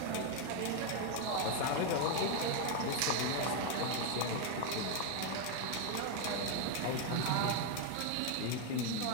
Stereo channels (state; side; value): different; both; correlation 0.01